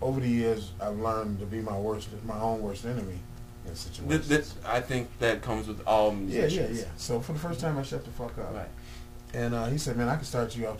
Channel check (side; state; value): both; identical; correlation 1.00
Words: over the years, I've learned to be my own worst enemy in situations. I think that comes with all musicians. Yeah. So for the first time, I shut the fuck up. Right. And he said, man, I can start you off